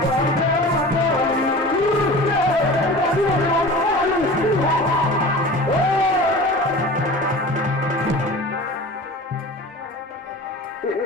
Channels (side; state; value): both; normal; correlation 0.37